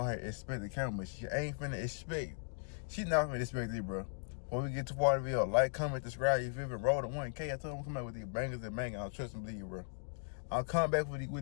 ahead and expect the camera, but she ain't finna expect. She's not finna expect it, bro. When we get to part of the video, like, comment, subscribe, you feel me? Roll to 1K. I told him I'm coming out with these bangers and bangers. I'll trust and believe, bro. I'll come back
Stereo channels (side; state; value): right; silent; digital silence